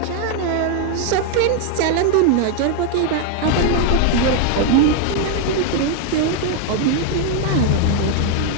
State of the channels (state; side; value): different; both; correlation 0.00